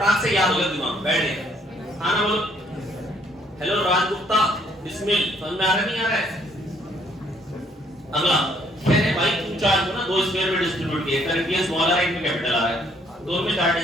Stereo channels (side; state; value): both; normal; correlation 0.66